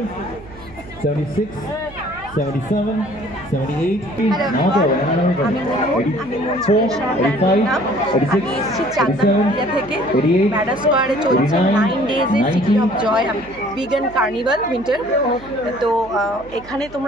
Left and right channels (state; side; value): noise; right; hum, 20 dB below the sound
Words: 76, 77, 78, 84, 85, 86, 87, 88, ম্যাটার স্কোয়ারে চলছে 9 days এর city of joy vegan carnival winter. তো এখানে